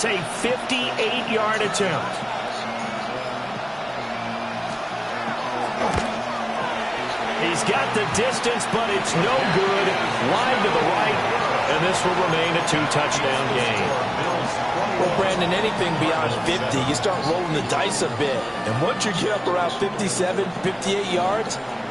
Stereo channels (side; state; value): both; identical; correlation 1.00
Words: a 58-yard attempt. He's got the distance, but it's no good. Wide to the right, and this will remain a 2-touchdown game. Well, Brandon, anything beyond 50, you start rolling the dice a bit. And once you get up around 57, 58 yards,